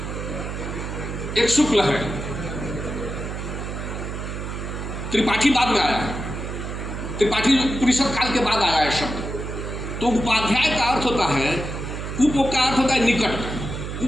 एक शुक्ल है, त्रिपाठी बाद में आया है। त्रिपाठी उपनिषद काल के बाद आया है शब्द। तो उपाध्याय का अर्थ होता है, उप का अर्थ होता है निकट,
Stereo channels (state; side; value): noise; right; hum, 6 dB below the sound